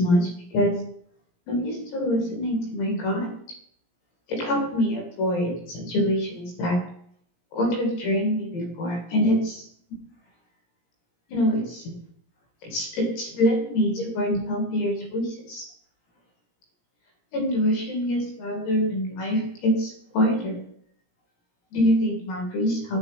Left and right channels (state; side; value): late; right; 17 ms